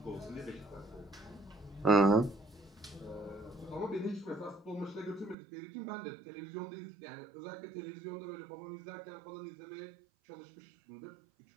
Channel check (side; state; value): left; drops out; at 5.4 s